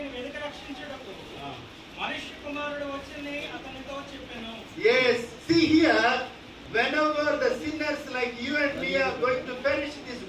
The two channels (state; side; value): identical; both; correlation 1.00